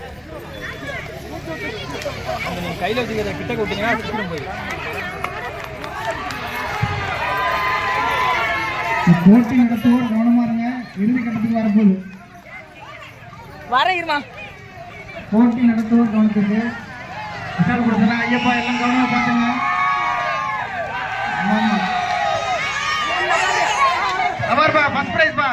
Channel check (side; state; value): both; identical; correlation 1.00